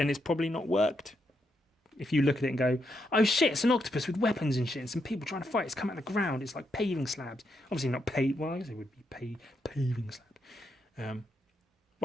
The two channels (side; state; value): both; normal; correlation 0.80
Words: probably not worked. If you look at it and go, oh shit, it's an octopus with weapons and shit and some people trying to fight, it's come out of the ground, it's like paving slabs. Obviously not well, I guess it would be paving slabs. Well,